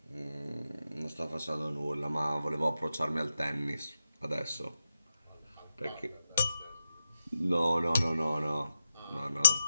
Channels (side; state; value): both; inverted; correlation -0.89